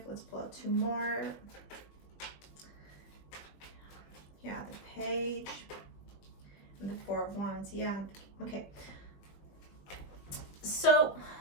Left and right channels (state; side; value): late; right; 20 ms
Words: Let's pull out 2 more. Yeah, the Page and the 4 of Wands. Yeah, okay. So